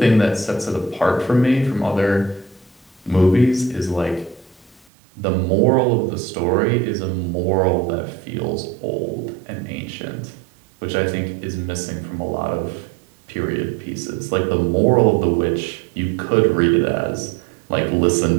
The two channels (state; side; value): drops out; left; at 4.9 s